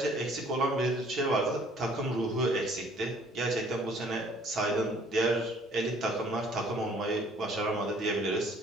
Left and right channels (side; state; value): both; normal; correlation 0.58